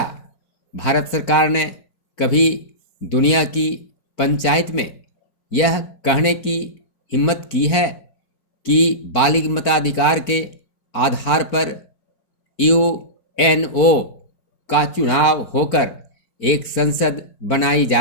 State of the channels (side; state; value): right; late; 4.4 ms